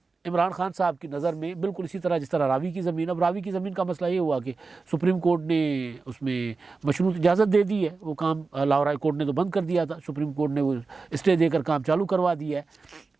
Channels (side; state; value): left; quieter; 4.2 dB